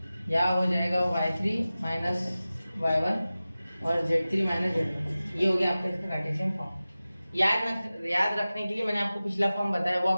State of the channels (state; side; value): inverted; both; correlation -0.96